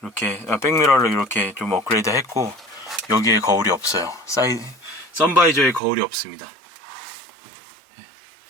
백미러를 이렇게 좀 업그레이드 했고, 여기에 거울이 없어요. 선바이저에 거울이 없습니다.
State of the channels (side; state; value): left; drops out; at 5.8 s